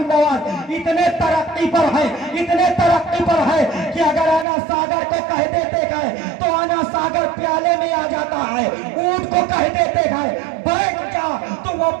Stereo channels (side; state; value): left; drops out; at 4.5 s